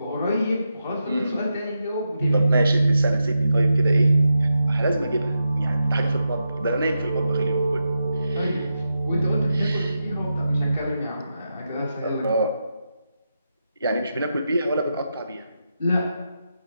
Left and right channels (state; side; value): inverted; both; correlation -0.87